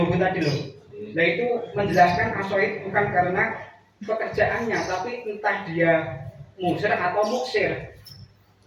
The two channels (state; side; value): identical; both; correlation 1.00